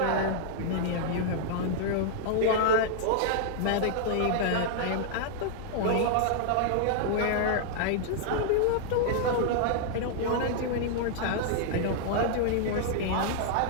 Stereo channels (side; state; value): both; different; correlation -0.01